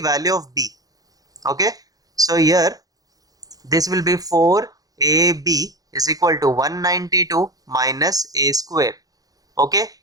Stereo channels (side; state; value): left; late; 0.18 ms